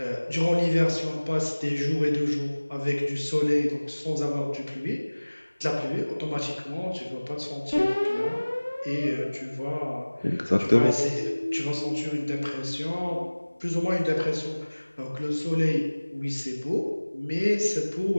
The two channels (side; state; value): both; inverted; correlation -1.00